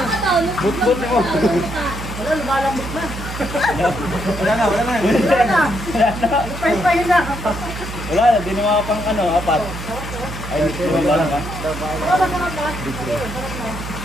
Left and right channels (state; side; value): noise; right; hum, 9 dB below the sound